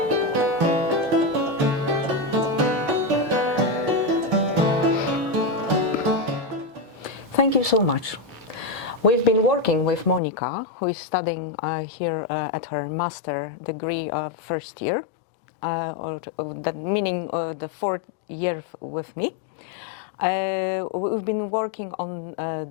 Thank you so much. We've been working with Monika, who is studying here at her master degree first year, that meaning the 4th year with me. We've been working on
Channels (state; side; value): drops out; right; at 10.2 s